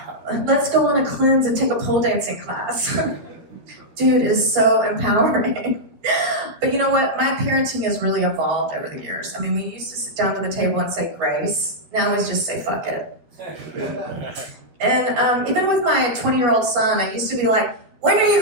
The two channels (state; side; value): late; left; 12 ms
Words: Let's go on a cleanse and take a pole dancing class. Dude, it is so empowering. But you know what? My parenting has really evolved over the years. I mean, we used to sit down to the table and say grace. Now we just say fuck it. And even with my 20-year-old son, I used to be like, when are you